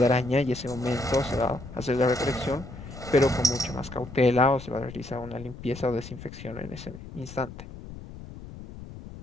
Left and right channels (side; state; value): left; noise; rumble, 13 dB below the sound